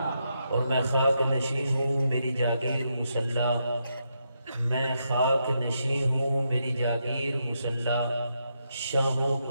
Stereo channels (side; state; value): both; inverted; correlation -0.81